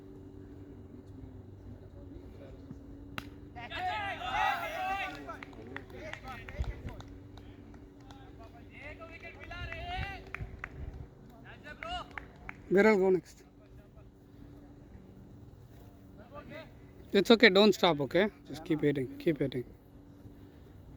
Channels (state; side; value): identical; both; correlation 1.00